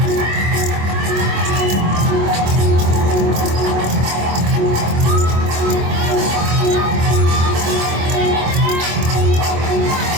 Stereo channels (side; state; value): left; late; 25 ms